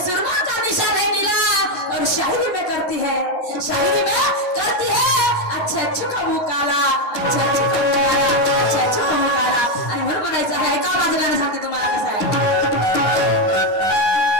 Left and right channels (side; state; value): right; late; 10 ms